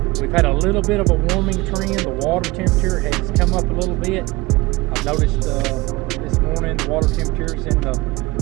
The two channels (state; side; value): quieter; left; 21.5 dB